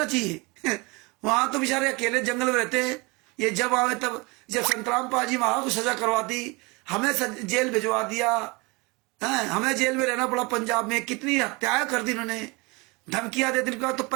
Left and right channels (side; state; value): left; quieter; 26.6 dB